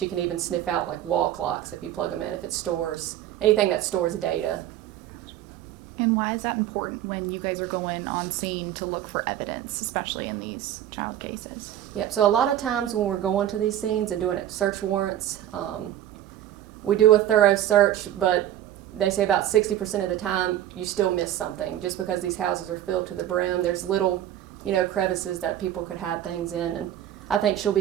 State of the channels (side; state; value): left; quieter; 12.0 dB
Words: can even sniff out like wall clocks if you plug them in, if it stores anything that stores data. And why is that important when you guys are going on scene to look for evidence, especially in these child cases? Yep, so a lot of times when we're going to these scenes and doing search warrants, we do a thorough search, but they say about 60% of the time you still miss something just because these houses are filled to the brim. There's little, crevices that people could hide things in, and I think she'll